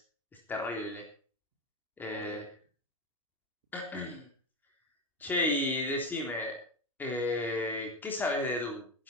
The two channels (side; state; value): both; normal; correlation 0.17